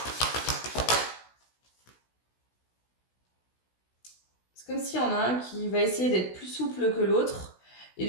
C'est comme s'il y en a un qui va essayer d'être plus souple que l'autre et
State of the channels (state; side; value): late; right; 16 ms